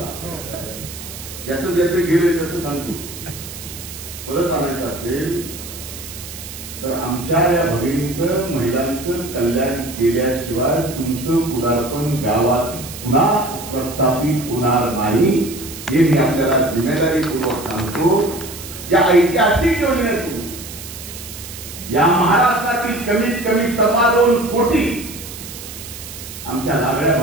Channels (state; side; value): noise; right; hiss, 12 dB below the sound